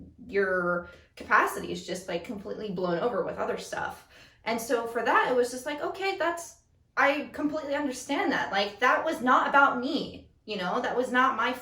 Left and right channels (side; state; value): both; identical; correlation 1.00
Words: your capacity is just like completely blown over with other stuff. And so for that, it was just like, okay, I completely understand that. Like, that was not about me, you know, that was not my